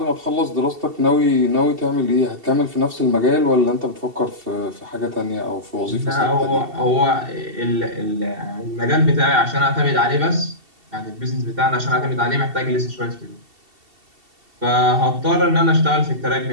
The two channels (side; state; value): left; late; 2.7 ms